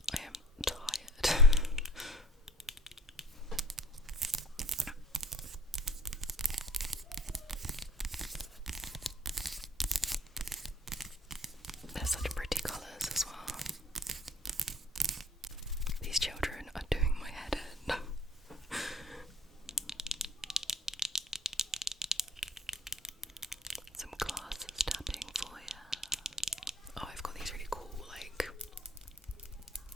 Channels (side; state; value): both; normal; correlation 0.50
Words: I am tired. They're such pretty colours as well. These children are doing my head in. Some glasses tapping for you. Oh, I've got these really cool, like,